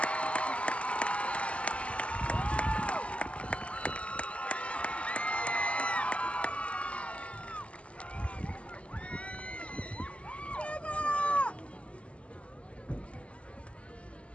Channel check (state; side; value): late; right; 0.060 ms